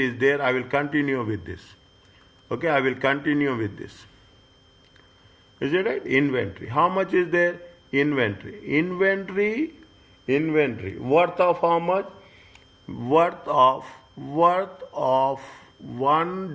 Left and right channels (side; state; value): both; identical; correlation 1.00